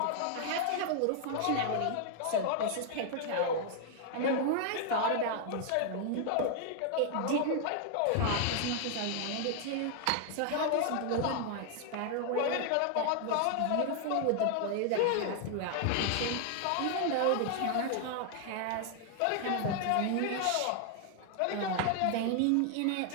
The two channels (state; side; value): different; both; correlation 0.00